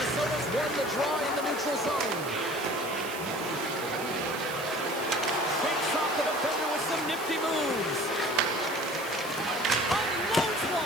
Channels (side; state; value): right; noise; hiss, 13 dB below the sound